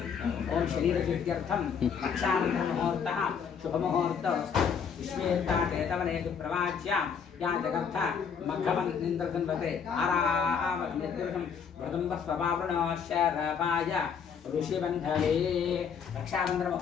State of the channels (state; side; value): quieter; right; 6.8 dB